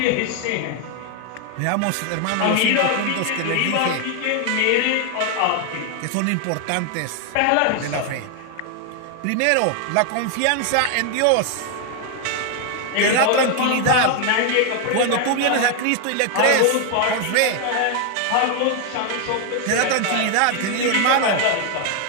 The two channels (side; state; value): both; different; correlation 0.01